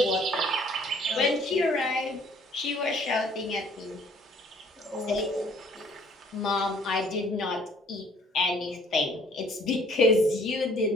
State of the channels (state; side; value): normal; both; correlation 0.58